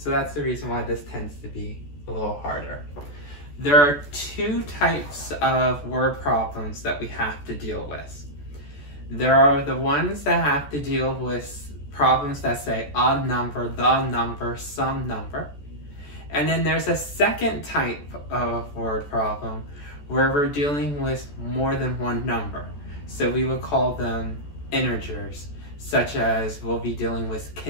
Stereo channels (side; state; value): right; late; 14 ms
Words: that's the reason why this tends to be a little harder. There are two types of word problems that we have to deal with. There are the ones that have to deal with problems that say a number, the number, some number. And then there's a second type of word problem where we're dealing with more than one number. So we would call them integers, such as we'll be dealing with